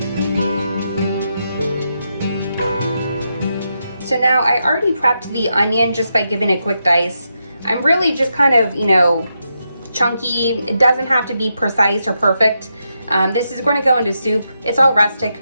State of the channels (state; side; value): inverted; both; correlation -0.84